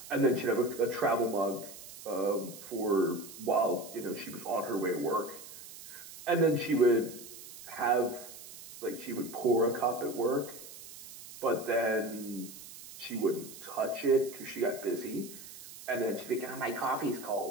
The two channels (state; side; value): noise; right; hiss, 15 dB below the sound